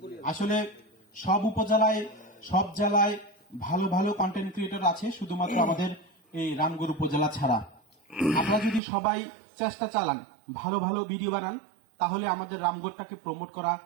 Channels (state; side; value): drops out; left; at 8.8 s